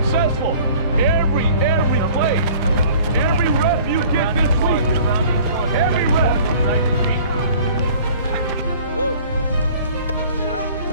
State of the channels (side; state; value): both; inverted; correlation -0.50